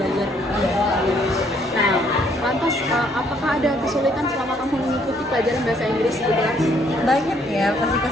Nah, lantas apakah ada kesulitan selama kamu mengikuti pelajaran bahasa Inggris di kelas? Banyak ya pasti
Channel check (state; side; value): normal; both; correlation 0.66